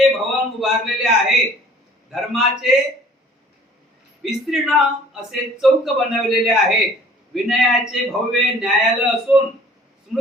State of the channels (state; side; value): normal; both; correlation 0.52